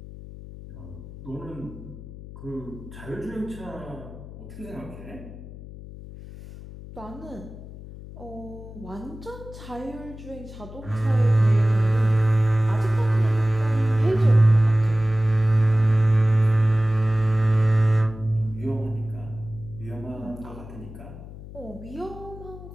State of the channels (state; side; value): noise; left; hum, 15 dB below the sound